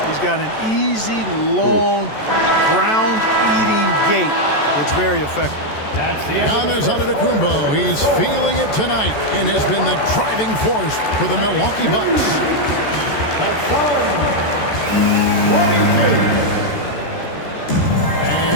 He's got an easy, long, ground-eating gait that's very effective. Giannis Antetokounmpo, he's feeling it tonight and has been the driving force for the Milwaukee Bucks.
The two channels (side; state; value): right; late; 14 ms